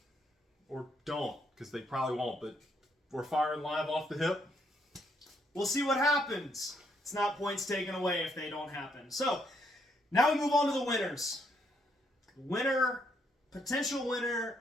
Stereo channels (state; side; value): normal; both; correlation 0.74